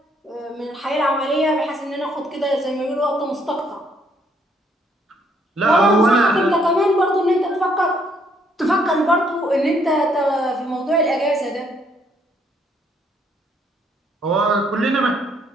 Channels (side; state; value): both; normal; correlation 0.68